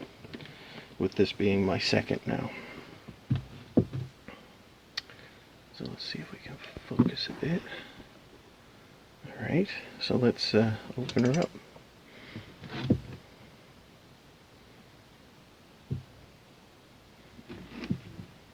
with this being my second now. So let's see if we can focus a bit. Alright, so let's open her up.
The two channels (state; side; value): identical; both; correlation 1.00